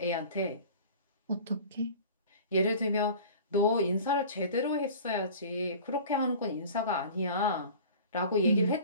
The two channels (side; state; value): both; inverted; correlation -0.41